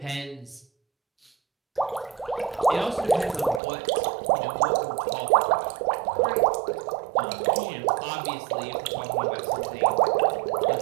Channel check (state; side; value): drops out; left; at 3.6 s